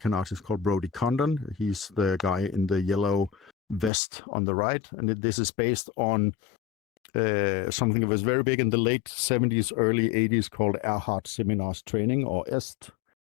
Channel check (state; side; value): drops out; right; at 3.9 s